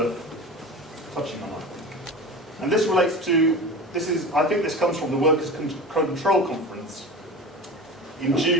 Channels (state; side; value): normal; both; correlation 0.32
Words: touching on, I think. And this relates to, I think this comes from the Workers' Control Conference in